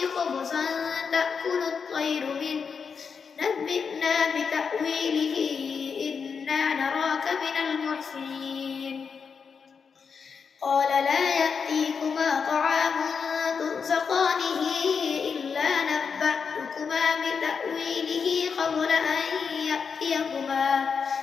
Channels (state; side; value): quieter; right; 5.9 dB